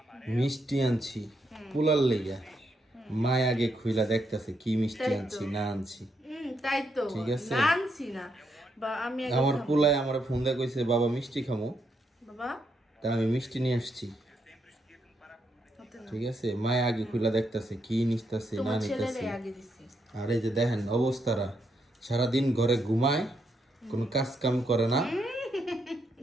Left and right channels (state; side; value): normal; both; correlation 0.79